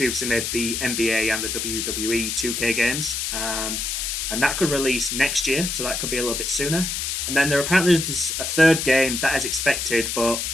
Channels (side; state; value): left; noise; hiss, 2 dB below the sound